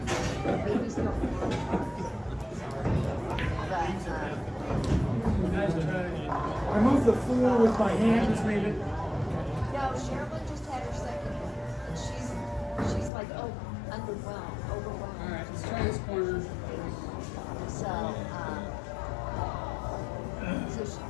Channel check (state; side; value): drops out; right; at 13.1 s